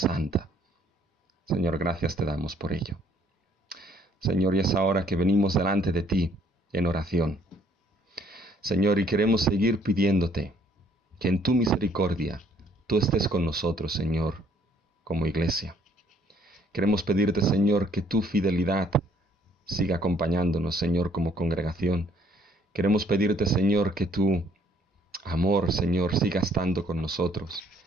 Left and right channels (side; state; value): both; normal; correlation 0.63